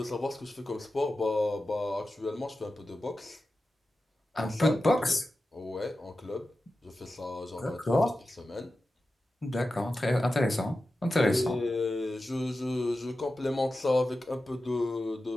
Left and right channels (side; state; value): both; normal; correlation 0.93